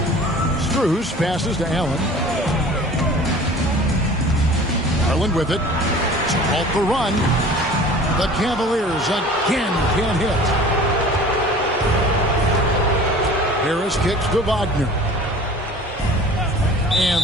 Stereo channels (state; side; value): normal; both; correlation 0.44